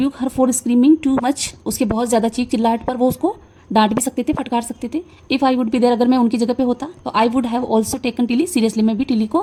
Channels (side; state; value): both; identical; correlation 1.00